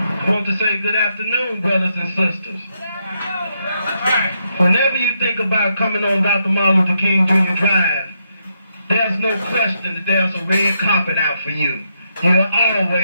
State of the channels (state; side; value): inverted; both; correlation -0.79